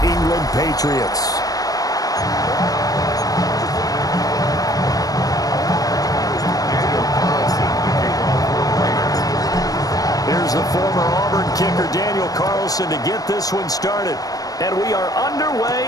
England Patriots. Here's the former Auburn kicker Daniel Carlson to get this one started. And we are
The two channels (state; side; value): late; right; 0.18 ms